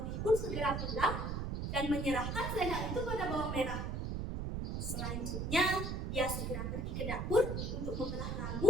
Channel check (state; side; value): noise; right; rumble, 2 dB below the sound